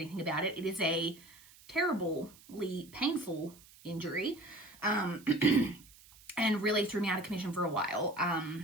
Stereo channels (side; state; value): right; noise; hiss, 23 dB below the sound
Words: about it, it is a terribly painful injury, and really threw me out of commission for a while.